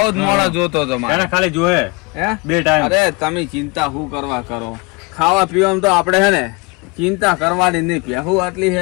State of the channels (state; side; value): quieter; right; 26.7 dB